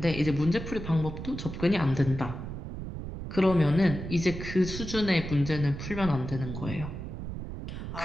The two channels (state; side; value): noise; right; rumble, 8 dB below the sound